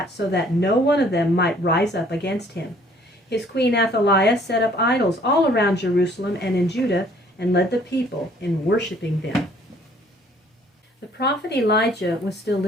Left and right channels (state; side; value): normal; both; correlation 0.59